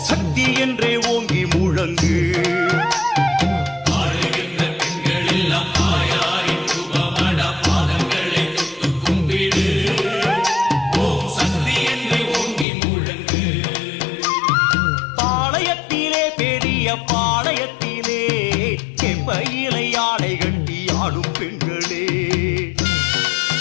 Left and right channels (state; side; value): drops out; right; at 12.7 s